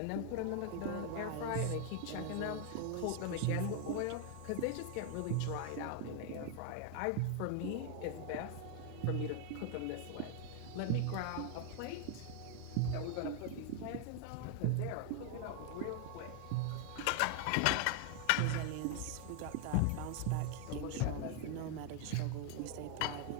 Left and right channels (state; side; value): different; both; correlation 0.00